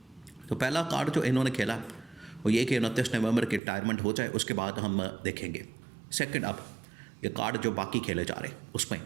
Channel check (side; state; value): left; drops out; at 3.6 s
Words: तो पहला कार्ड जो इन्होंने खेला वो ये कि 29 नवंबर की रिटायरमेंट हो जाए, उसके बाद हम देखेंगे। सेकंड, अब ये कार्ड जो बाकी खेले जा रहे हैं उसमें